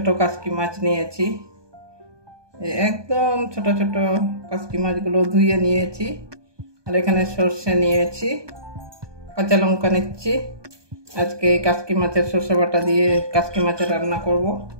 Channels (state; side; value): late; left; 1.2 ms